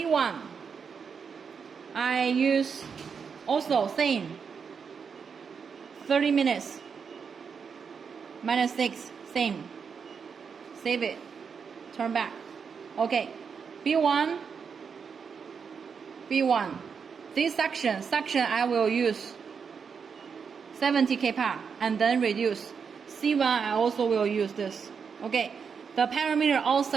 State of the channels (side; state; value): left; quieter; 6.2 dB